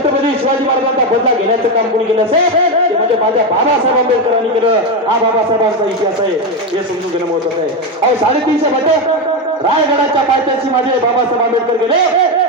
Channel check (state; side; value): normal; both; correlation 0.11